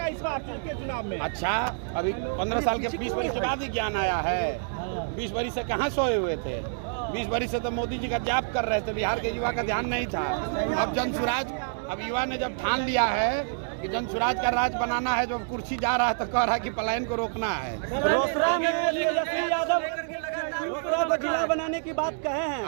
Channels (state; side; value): silent; left; digital silence